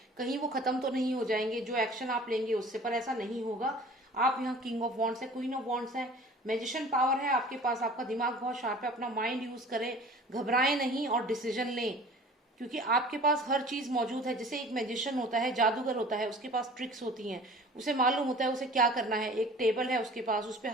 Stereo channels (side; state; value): both; normal; correlation 0.45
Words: कहीं वो खत्म तो नहीं हो जाएंगे जो एक्शन आप लेंगे उससे, पर ऐसा नहीं होगा। आप यहाँ किंग ऑफ वॉन्ड्स है, क्वीन ऑफ वॉन्ड्स है, मैजिशियन पावर है आपके पास, आपका दिमाग बहुत शार्प है, अपना माइंड यूज करें, घबराएं नहीं और डिसीजन लें क्योंकि आपके पास हर चीज मौजूद है। जैसे एक मैजिशियन होता है, जादूगर होता है, उसके पास ट्रिक्स होती हैं, उसे मालूम होता है उसे क्या करना है। एक टेबल है उसके पास, उस